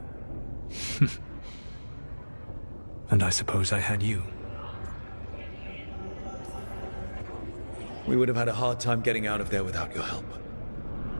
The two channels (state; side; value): inverted; both; correlation -1.00